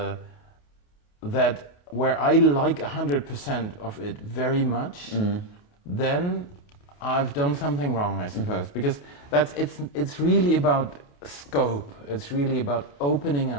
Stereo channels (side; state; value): right; late; 28 ms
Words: where I like 100% of it very much, then I've done something wrong, I suppose, because it's really about scope. It's really about opening